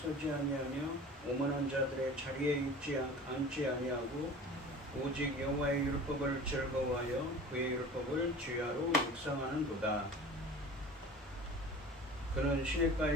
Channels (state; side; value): normal; both; correlation 0.40